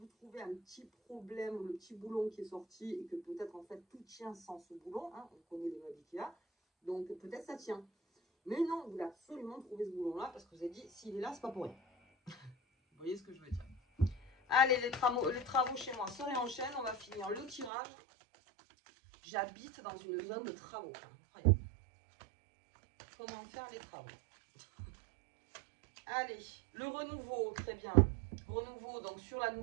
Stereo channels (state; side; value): drops out; left; at 17.7 s